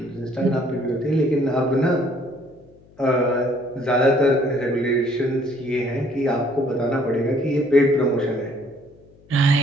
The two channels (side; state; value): left; noise; hum, 28 dB below the sound